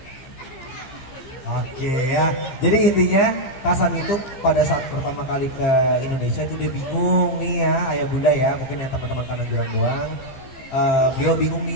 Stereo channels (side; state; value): right; late; 15 ms